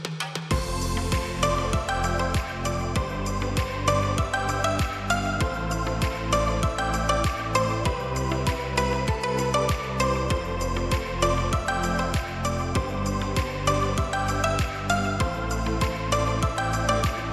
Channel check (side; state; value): both; identical; correlation 1.00